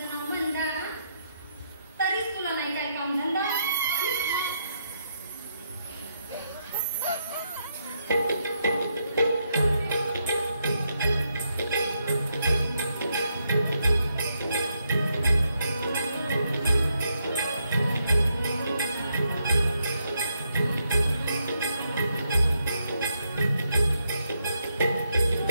नाव वंदा तरीच तुला नाही काय काम धंदा.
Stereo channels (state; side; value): inverted; both; correlation -0.79